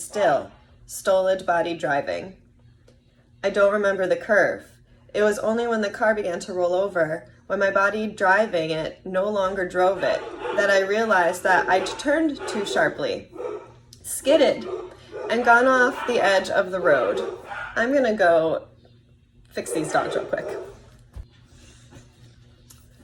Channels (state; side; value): identical; both; correlation 1.00